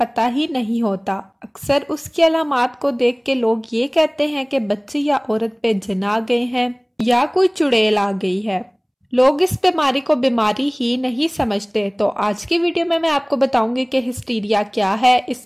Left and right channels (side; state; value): both; identical; correlation 1.00